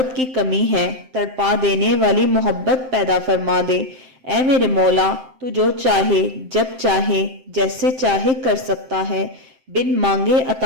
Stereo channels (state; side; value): late; left; 7.7 ms